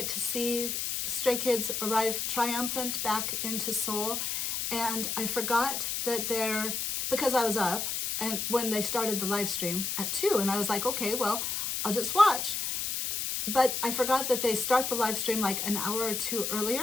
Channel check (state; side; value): noise; left; hiss, 1 dB below the sound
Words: to see Stray Kids arrive triumphant back into Seoul, and I forgot that because I was up and when they started the live stream at 2, and I was like, okay, well, I'll just watch. But I forgot that they start the live stream like an hour or 2